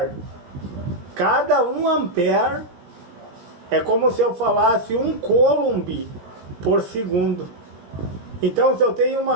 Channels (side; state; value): left; late; 18 ms